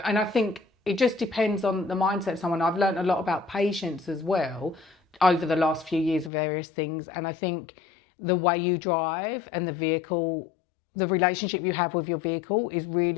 I think it just depends on the mindset of someone. I've learned a lot about patience as well over the last few years of various things. And I think the way you drive and the vehicle, the relationship you have with your vehicle is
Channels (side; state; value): right; drops out; at 6.3 s